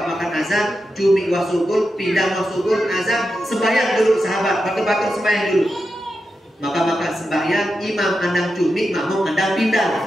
makan azan, cumi wasugul, pindah wasugul, azan, sembahyang dulu sahabat, batuk-batuk sembahyang dulu. Maka sembahyang, imam andang cumi, makmum andang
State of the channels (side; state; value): both; normal; correlation 0.88